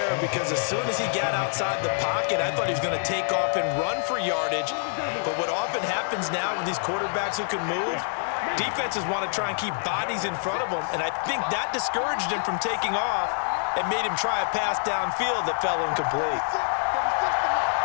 because as soon as he got outside the pocket, I thought he was going to take off and run for yardage. But what often happens now with these quarterbacks who can move, defenses want to try and keep bodies in front of them, and I think that discouraged him from taking off and made him try a pass downfield that fell incomplete.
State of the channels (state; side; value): silent; right; digital silence